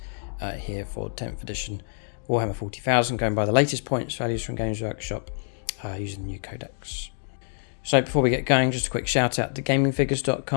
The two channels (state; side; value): silent; right; digital silence